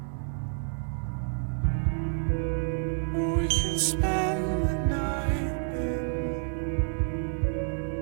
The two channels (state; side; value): silent; left; 59 dB below the other